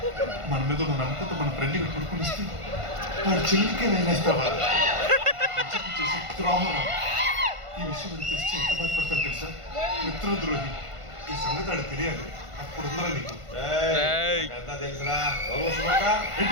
మన మీద ఉన్న నమ్మకంతో మన ఫ్రెండ్ ఇక్కడ పడుకుని వస్తే వాడు చెల్లికే నేనేస్తావా? చేసే ద్రోహం. ఈ విషయం తెలిసి ఎంత బాధపడతారు తెలుసా? మిత్రద్రోహి. ఈ సంగతి ఆడు తెలియాలి. అప్పుడు ఉందరా నీకు తెలుసురా.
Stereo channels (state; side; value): late; left; 1.5 ms